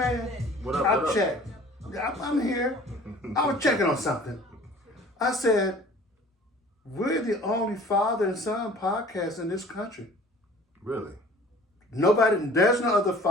What up? I checked. I'm here. I was checking on something. I said, we're the only father and son podcast in this country. Really? There's no other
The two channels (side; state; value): both; normal; correlation 0.48